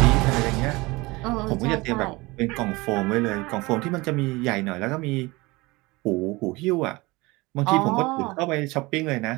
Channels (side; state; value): left; quieter; 22.8 dB